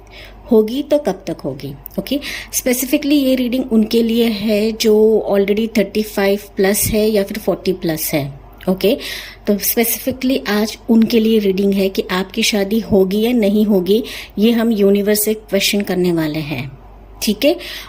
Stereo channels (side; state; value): both; identical; correlation 1.00